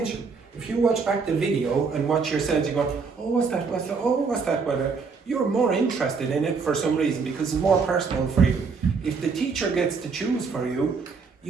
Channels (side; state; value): left; quieter; 5.0 dB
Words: If you watch back the video and watch yourselves, you go, oh, what's that, oh, what's that, you're more interested in it for some reason because it's more personal for you. If the teacher gets to choose for you,